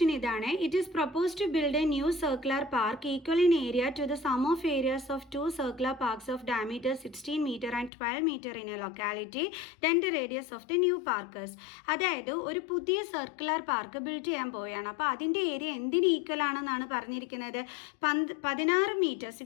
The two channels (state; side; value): drops out; right; at 7.9 s